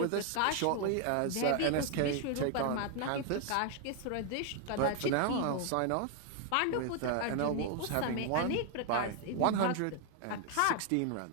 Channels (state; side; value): different; both; correlation 0.00